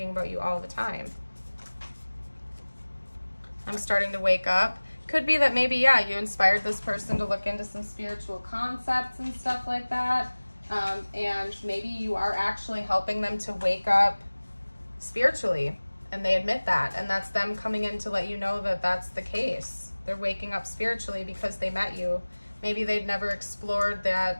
about you all the time. I'm starting to wake up. Could be that maybe, yeah, you inspired this person to look into some spiritual concepts and stuff like that. And maybe you are actually helping them to wake up spiritually, and they admit that, and that's them coming in to let you know that that's the case. They're waking up spiritually because they met you. Maybe they'd never explored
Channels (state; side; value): inverted; both; correlation -1.00